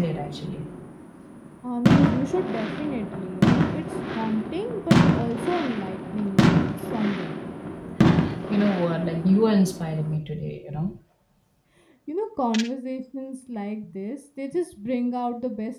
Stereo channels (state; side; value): identical; both; correlation 1.00